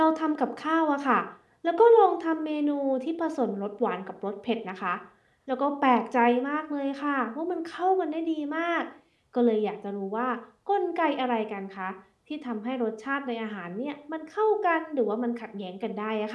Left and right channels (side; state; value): both; identical; correlation 1.00